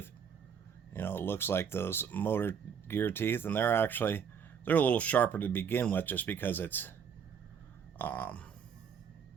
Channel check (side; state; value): left; quieter; 7.3 dB